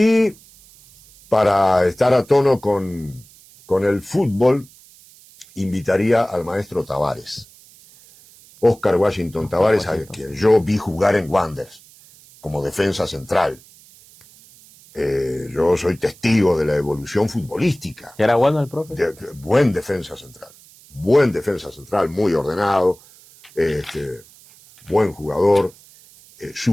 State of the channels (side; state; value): right; noise; hiss, 25 dB below the sound